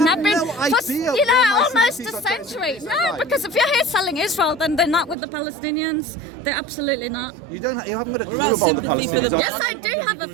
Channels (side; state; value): left; drops out; at 5.2 s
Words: have been for almost a century. No, because if you're here selling Israel, then they're not with the Palestinians. They're absolutely not. You haven't got a clue about the Palestinians. Yes, I do have a